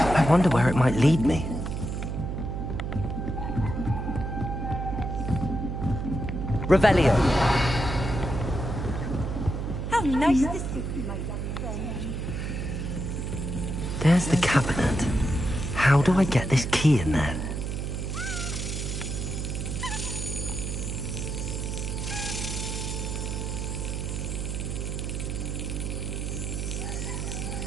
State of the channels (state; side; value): noise; right; hum, 3 dB below the sound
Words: I wonder where it might lead me. Revelio. How nice to see you, my young friend. There's the cabinet. How do I get this key in there?